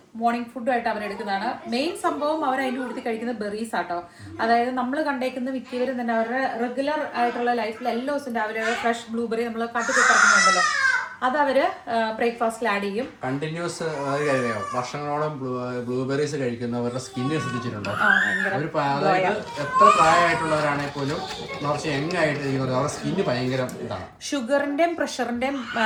മോർണിംഗ് ഫുഡും ആയിട്ട് അവരെടുക്കുന്നതാണ്. മെയിൻ സംഭവം അവർ അതിൻ്റെ കൂടുതൽ കഴിക്കുന്ന ബെറീസ് ആട്ടോ. അതായത് നമ്മൾ കണ്ടേക്കുന്ന മിക്കവരും തന്നെ അവരുടെ റെഗുലർ ആയിട്ടുള്ള ലൈഫിൽ എല്ലാ ദിവസവും രാവിലെ ഫ്രഷ് ബ്ലൂബെറി നമ്മൾ കട്ടിക്കിറക്കുന്നുണ്ടല്ലോ, അത് അവര് ബ്രേക്ക്ഫാസ്റ്റിൽ ആഡ് ചെയ്യും. കണ്ടിന്യൂസ് വർഷങ്ങളോളം ബ്ലൂബെറീസ് കഴിക്കുന്നവരുടെ സ്കിന്നിനെ ശ്രദ്ധിച്ചിട്ടുണ്ടോ? അതായത് എത്ര പ്രായമായിട്ടുള്ളവരാണെങ്കിൽ പോലും കുറച്ച് യങ് ആയിട്ട് ഇരിക്കുന്നത് അവരുടെ സ്കിന്ന് ഭയങ്കര ഇതാണ്. ഷുഗറിന്റെയും പ്രഷറിന്റെയും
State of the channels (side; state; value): both; identical; correlation 1.00